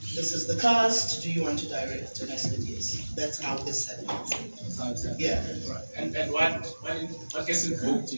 This is the cast. Do you want to direct? And I said yes. That's how this happened. Yeah. Right. And what gets invoked in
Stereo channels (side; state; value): both; inverted; correlation -1.00